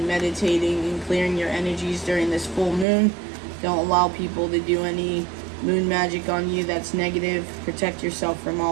meditating and clearing your energies during this full moon. Don't allow people to do any moon magic on you that's negative. Protect yourself from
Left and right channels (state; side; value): drops out; left; at 2.9 s